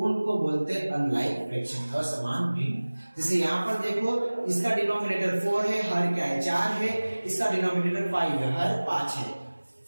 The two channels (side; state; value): both; inverted; correlation -1.00